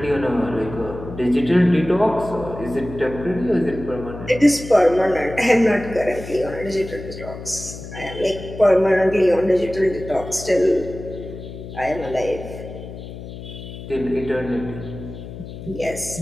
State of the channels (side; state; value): left; noise; hum, 12 dB below the sound